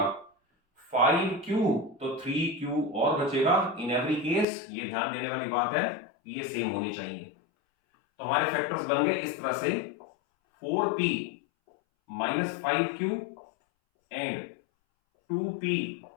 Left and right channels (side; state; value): right; drops out; at 4.5 s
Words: 5q, तो 3q और बचेगा। इन एवरी केस ये ध्यान देने वाली बात है, ये सेम होने चाहिए। तो हमारे फैक्टर्स बन गए इस तरह से 4p minus 5q and 2p